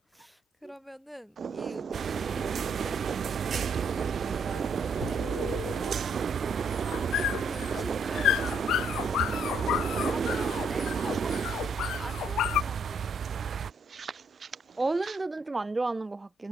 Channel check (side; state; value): both; normal; correlation 0.71